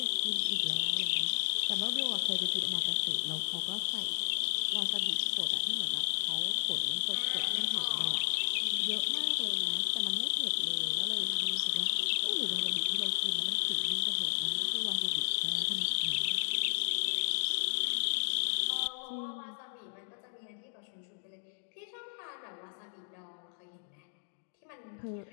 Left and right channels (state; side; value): silent; right; digital silence